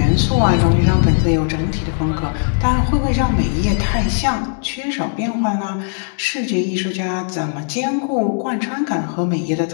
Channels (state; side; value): silent; right; digital silence